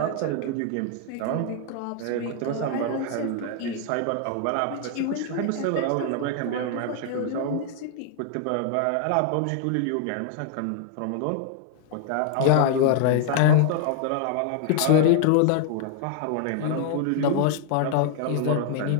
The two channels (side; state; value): both; different; correlation 0.00